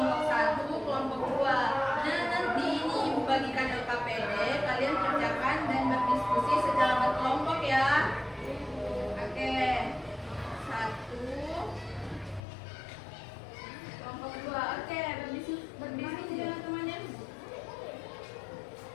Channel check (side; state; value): right; drops out; at 12.4 s